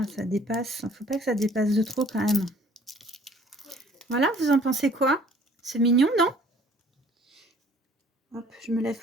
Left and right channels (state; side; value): normal; both; correlation 0.55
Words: ça dépasse. Il ne faut pas que ça dépasse de trop quand même. Voilà, vous en pensez quoi? C'est mignon, non? Hop, je me lève